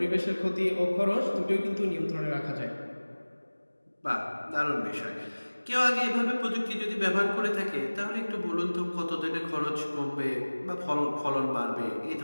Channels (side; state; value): both; inverted; correlation -1.00